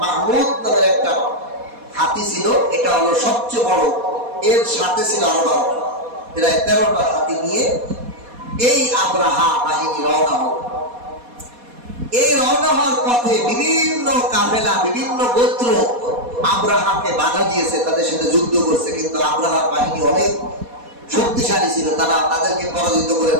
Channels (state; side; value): late; left; 4.2 ms